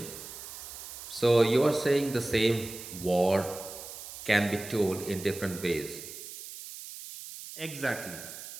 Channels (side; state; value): right; noise; hiss, 12 dB below the sound